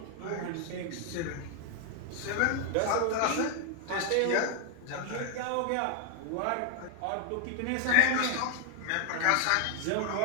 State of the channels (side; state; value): both; different; correlation 0.00